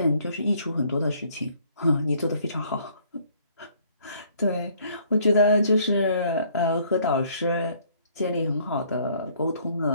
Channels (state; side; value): inverted; both; correlation -0.62